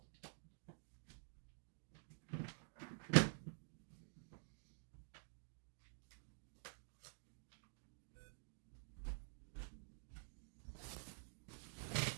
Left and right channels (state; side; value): silent; left; digital silence